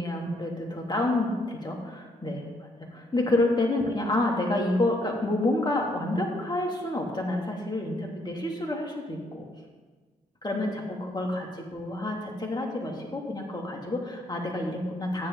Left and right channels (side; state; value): both; normal; correlation 0.70